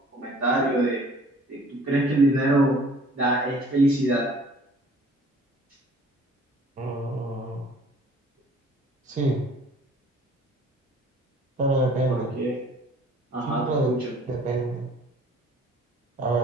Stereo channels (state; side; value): normal; both; correlation 0.53